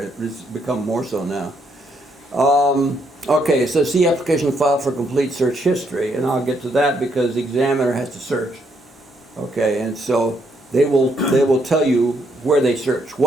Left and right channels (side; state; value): both; normal; correlation 0.73